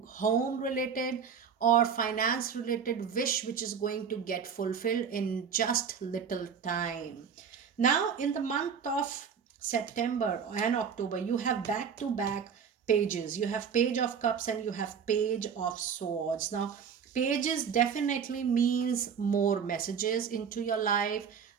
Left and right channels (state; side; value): quieter; left; 6.9 dB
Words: home related or finance related wish which is going to get fulfilled in just little time. Now in the month of September and October, you have back to back pages. You have Page of Cups and you have Page of Swords. Now pages definitely means more messages into your life.